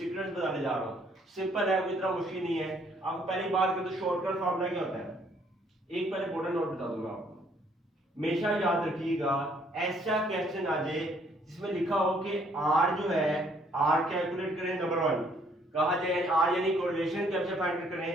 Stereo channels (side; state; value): both; normal; correlation 0.65